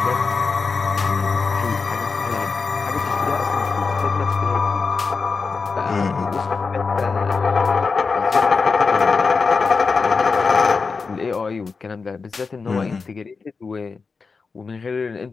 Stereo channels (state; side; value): quieter; right; 4.7 dB